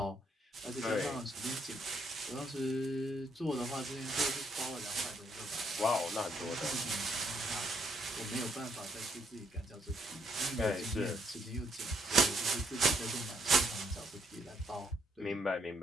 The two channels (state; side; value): normal; both; correlation 0.72